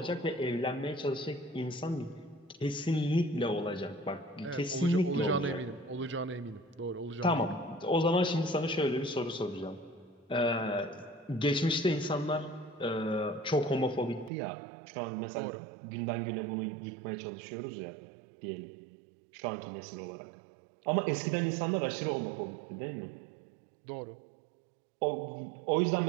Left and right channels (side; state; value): left; drops out; at 14.3 s